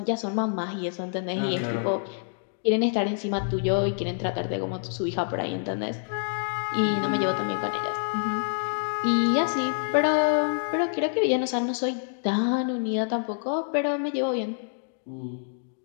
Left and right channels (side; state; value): right; silent; digital silence